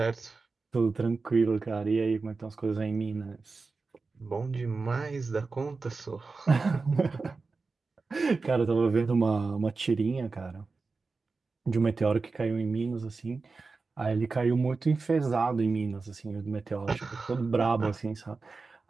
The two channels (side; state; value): left; quieter; 4.1 dB